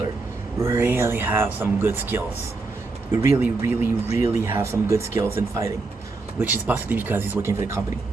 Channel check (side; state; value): left; quieter; 3.7 dB